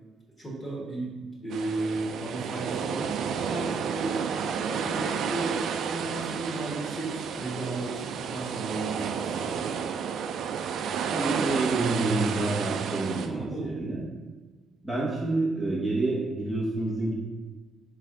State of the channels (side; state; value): left; quieter; 3.9 dB